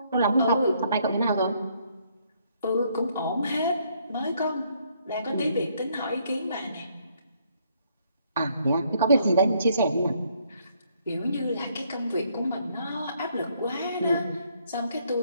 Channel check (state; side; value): inverted; both; correlation -0.69